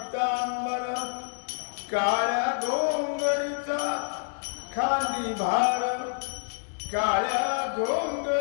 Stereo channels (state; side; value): silent; right; 59 dB below the other